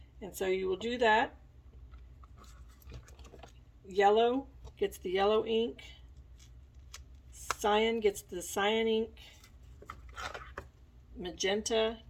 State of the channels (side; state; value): both; identical; correlation 1.00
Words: And so you will do that. Yellow gets the yellow ink. Cyan gets the cyan ink. Magenta